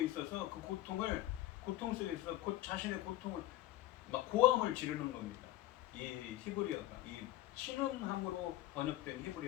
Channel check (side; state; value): right; quieter; 15.4 dB